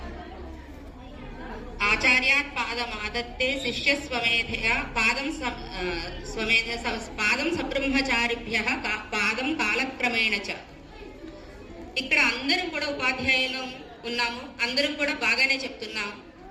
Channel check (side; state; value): both; identical; correlation 1.00